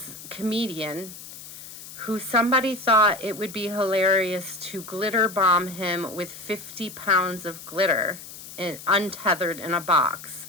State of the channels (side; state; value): left; noise; hiss, 14 dB below the sound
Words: comedian who somebody thought it would be hilarious to glitter bomb him with 50 pounds of glitter untethered in a box,